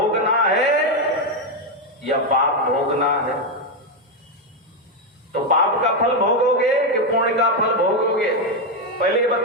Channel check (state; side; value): normal; both; correlation 0.05